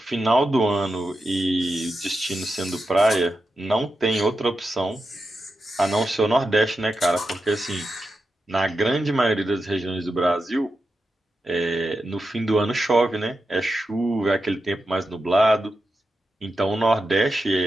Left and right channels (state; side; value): normal; both; correlation 0.89